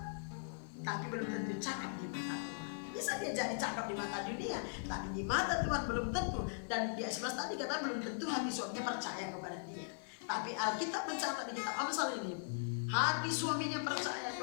tapi belum tentu cakap di mata Tuhan. Bisa dia jadi cakap di mata dunia, tapi di mata Tuhan belum tentu. Dan di ayat 11 tadi kata belum tentu hati suaminya percaya kepada dia. Tapi Alkitab mencatat di kitab Amsal ini, hati suaminya percaya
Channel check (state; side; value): silent; right; 51 dB below the other